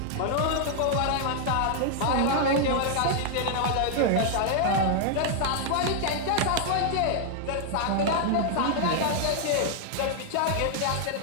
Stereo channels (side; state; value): both; different; correlation 0.00